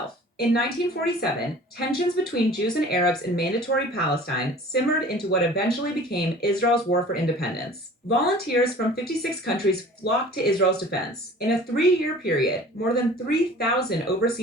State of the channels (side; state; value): both; normal; correlation 0.45